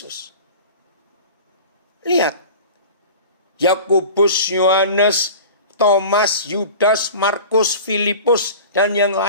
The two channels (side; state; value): both; inverted; correlation -0.38